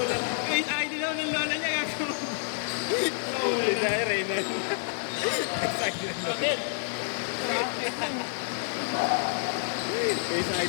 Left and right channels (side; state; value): right; silent; digital silence